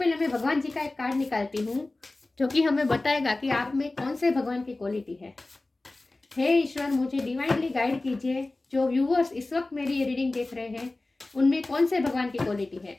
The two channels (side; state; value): right; quieter; 3.0 dB